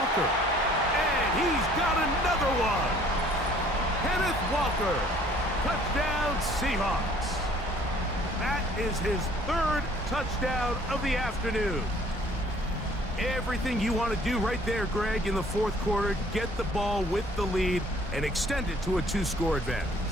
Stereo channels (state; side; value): normal; both; correlation 0.57